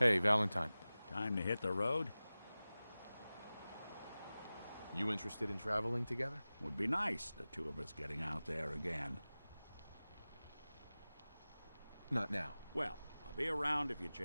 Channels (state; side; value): inverted; both; correlation -0.97